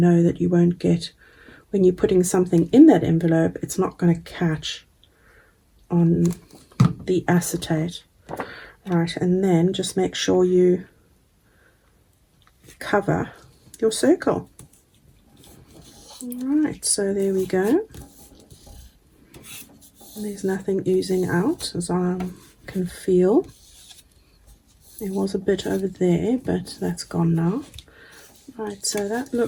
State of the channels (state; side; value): identical; both; correlation 1.00